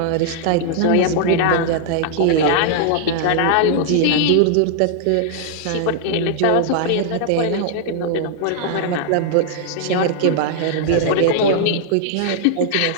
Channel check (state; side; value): different; both; correlation -0.01